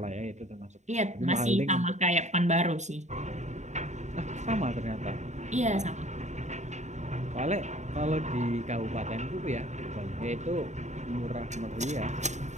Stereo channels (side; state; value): left; late; 0.34 ms